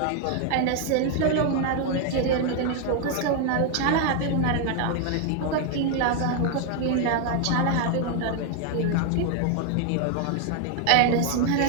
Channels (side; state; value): both; different; correlation 0.00